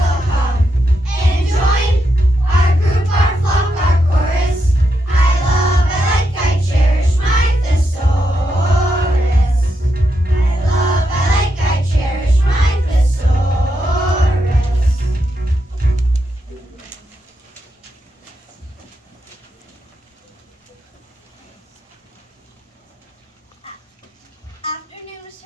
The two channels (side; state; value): both; normal; correlation 0.83